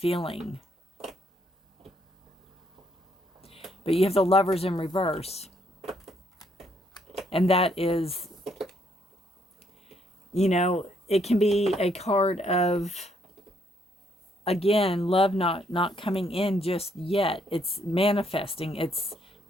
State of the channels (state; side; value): normal; both; correlation 0.71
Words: But you have the Lovers in reverse. And that is, you know, it can be a card of, again, love not coming in just yet. It's manifesting. It's